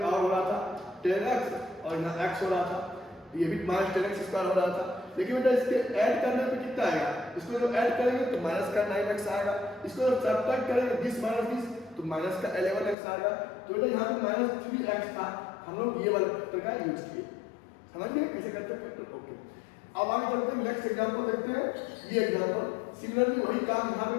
और हो रहा था 10x और यहाँ x हो रहा था, ये भी -10x स्क्वायर हो रहा था। लेकिन बेटा इसके ऐड करने पे कितना आएगा, इसको जो ऐड करेंगे तो माइनस का 9x आएगा, इसको जब सब्ट्रैक्ट करेंगे दिस माइनस दिस तो माइनस का 11x आएगा। तो बेटा यहाँ पे -3x था, हम लोग ये वाले फैक्टर का यूज किए। समझ गए कैसे करते हैं फैक्टर? ओके, अब आगे चलते हैं, नेक्स्ट एग्जांपल देखते हैं। ये एग्जांपल सिमिलरली वही काम यहाँ पे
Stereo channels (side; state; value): right; drops out; at 13.0 s